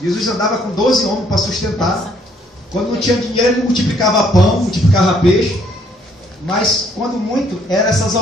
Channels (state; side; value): normal; both; correlation 0.66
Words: andava com 12 homens para sustentar. Quando não tinha dinheiro, ele multiplicava pão, multiplicava peixe. Mas quando muito, eram essas